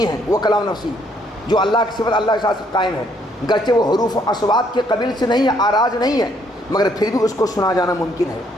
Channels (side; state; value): both; normal; correlation 0.68